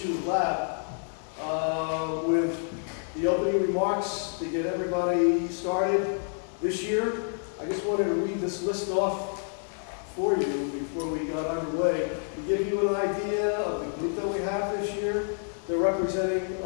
Lab with the opening remarks to get everybody started this year. I just wanted to read this list off for you before we got underway to give you an idea of the group that we have this year. They're representing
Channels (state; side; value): silent; right; 59 dB below the other